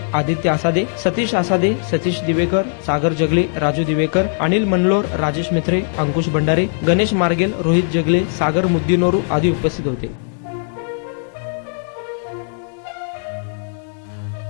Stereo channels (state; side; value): silent; right; digital silence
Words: आदित्य आसादे, सतीश आसादे, सतीश दिवेकर, सागर जगले, राजू दिवेकर, अनिल मनलोर, राजेश मित्रे, अंकुश भंडारे, गणेश मार्गेल, रोहित जगले, सागर मुद्दीनोरू आदी उपस्थित होते।